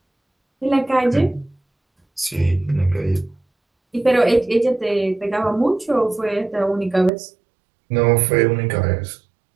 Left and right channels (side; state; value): left; drops out; at 7.1 s